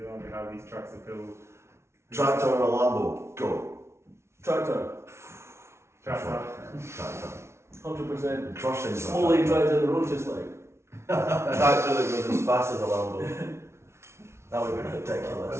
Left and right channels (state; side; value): late; left; 0.13 ms